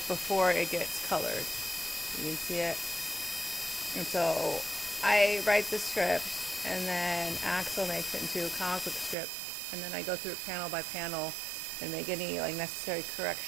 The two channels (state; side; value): drops out; left; at 9.2 s